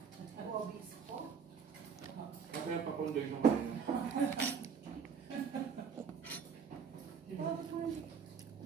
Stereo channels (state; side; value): quieter; left; 6.4 dB